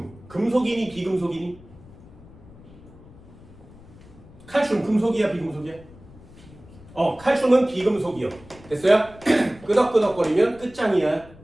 금속이니 비금속이니? 칼슘 금속이야 비금속이야? 칼슘은 비금속이요. 됐어요? 끄덕끄덕거리면 끝장이야.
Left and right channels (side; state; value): left; noise; rumble, 21 dB below the sound